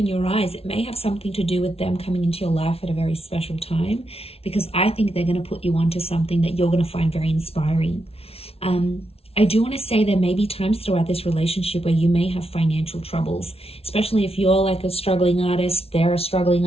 your eyes. It may have something to do with them coming into your life at a very special time, because I think they're going to put you onto something that you're going to find very inspiring. I do want to say there may be times throughout this relationship where you may have financial troubles, especially if you're like a struggling artist, they're a struggling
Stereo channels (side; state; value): right; late; 0.29 ms